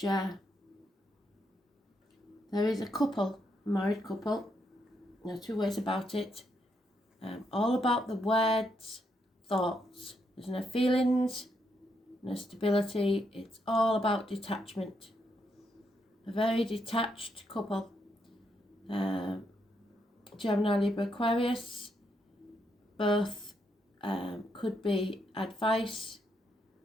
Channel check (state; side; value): normal; both; correlation 0.78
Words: there is a couple, a married couple, there are two ways about it, all about the words, thoughts. There's no feelings, no stability, it's all about detachment. A very detached couple. Gemini, Libra, Aquarius, both could be advice